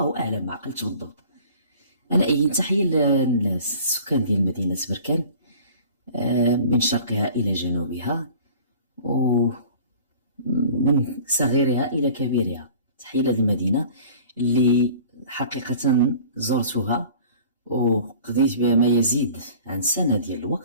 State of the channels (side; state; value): both; inverted; correlation -0.47